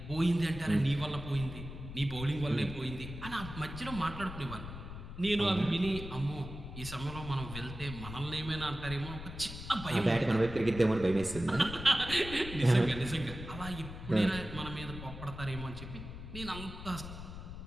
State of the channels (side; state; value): left; noise; rumble, 10 dB below the sound